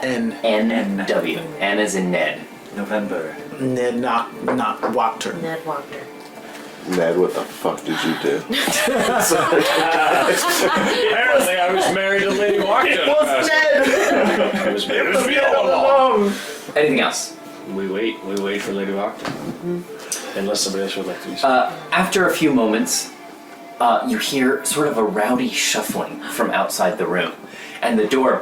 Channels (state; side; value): identical; both; correlation 1.00